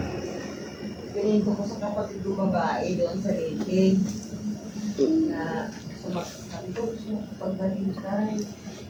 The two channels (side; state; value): both; identical; correlation 1.00